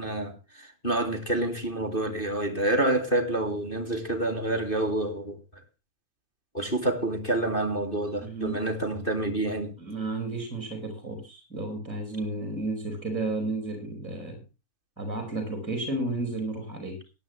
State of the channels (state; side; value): late; right; 2.6 ms